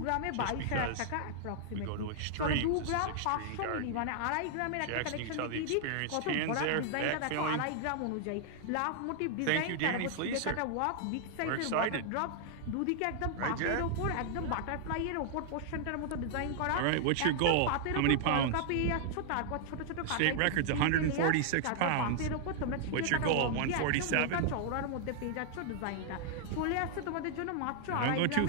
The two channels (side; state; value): both; different; correlation -0.01